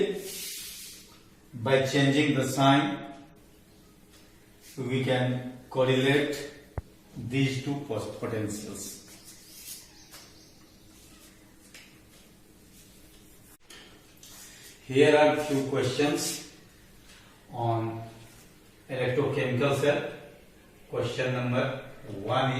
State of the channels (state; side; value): identical; both; correlation 1.00